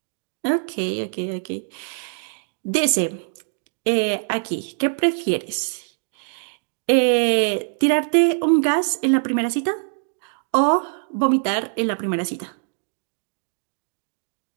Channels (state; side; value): silent; left; digital silence